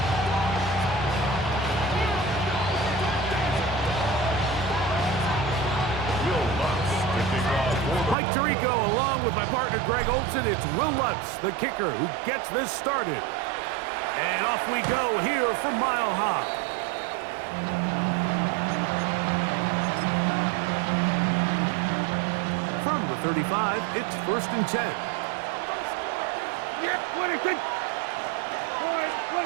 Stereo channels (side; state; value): left; drops out; at 8.2 s